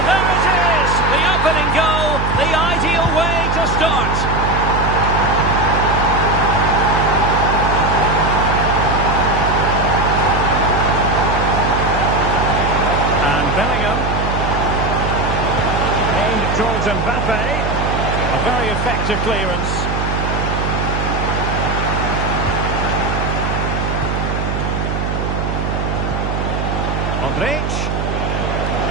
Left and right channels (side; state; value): right; noise; hum, 2 dB below the sound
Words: there it is! The opening goal, the ideal way to start. And Bellingham. Aimed towards Mbappe. A very effective clearance. Modric.